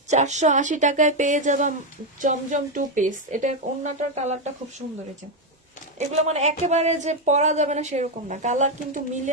480 টাকায় পেয়ে যাবা জমজম 2 পিস। এটা ওড়নাটার কালারটা খুব সুন্দর। এই যে এগুলো মানে একেবারে যে পরা যাবে না সেরকম না, কালার কিন্তু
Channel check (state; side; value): normal; both; correlation 0.05